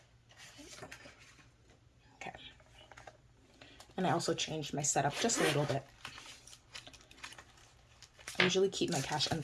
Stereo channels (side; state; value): both; identical; correlation 1.00